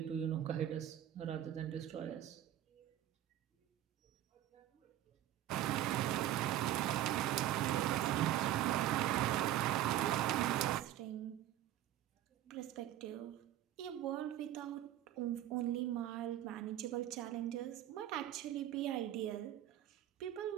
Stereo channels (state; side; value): quieter; left; 12.6 dB